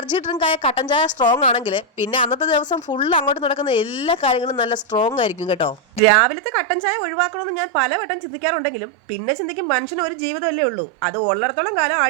ഡ്രിങ്ക് ആയ കട്ടൻ ചായ സ്ട്രോങ് ആണെങ്കിൽ പിന്നെ അന്നത്തെ ദിവസം ഫുൾ അങ്ങോട്ട് നടക്കുന്ന എല്ലാ കാര്യങ്ങളും നല്ല സ്ട്രോങ് ആയിരിക്കും കേട്ടോ. രാവിലത്തെ കട്ടൻ ചായ ഒഴിവാക്കണമെന്ന് ഞാൻ പലവട്ടം ചിന്തിക്കാറുണ്ടെങ്കിലും പിന്നെ ചിന്തിക്കും മനുഷ്യന് ഒരു ജീവിതമല്ലേ ഉള്ളൂ. അത് ഉള്ളിടത്തോളം കാലം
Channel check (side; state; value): left; drops out; at 6.0 s